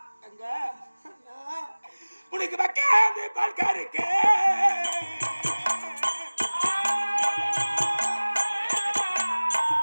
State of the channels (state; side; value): inverted; both; correlation -1.00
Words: அங்க உனக்கு வைக்காது பால் கறக்க